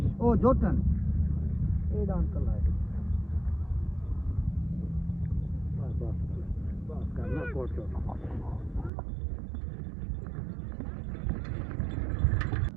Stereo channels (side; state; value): left; drops out; at 8.9 s